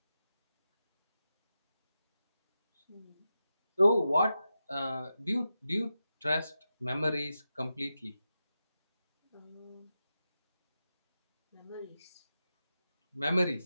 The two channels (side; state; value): both; inverted; correlation -0.91